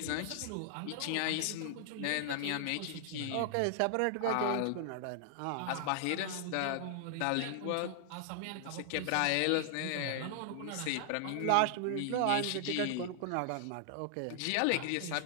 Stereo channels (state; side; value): different; both; correlation 0.00